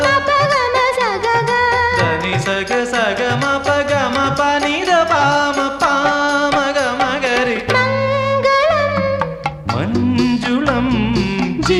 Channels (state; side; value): identical; both; correlation 1.00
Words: മപഗമ സഗഗ ധനി സഗ സഗ മപ ഗമ പനിത പാമ പാമ ഗമ ഗരി മംഗളം മഞ്ജുളം